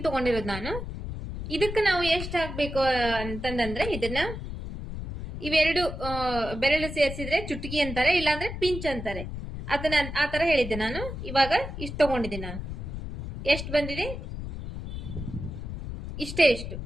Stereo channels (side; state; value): left; noise; rumble, 7 dB below the sound